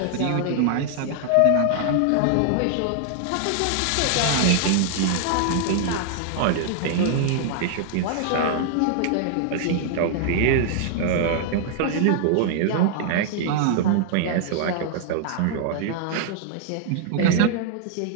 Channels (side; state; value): both; different; correlation 0.00